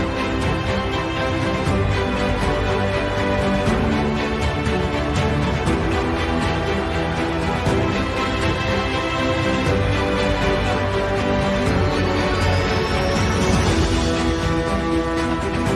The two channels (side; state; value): both; identical; correlation 1.00